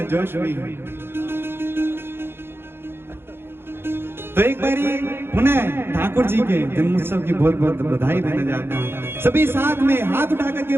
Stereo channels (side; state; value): left; late; 0.11 ms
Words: जोश भी है। तो एक बारी पुनः ठाकुर जी के जन्मोत्सव की बहुत बहुत बधाई देने जाता हूँ। सभी साथ में हाथ उठा करके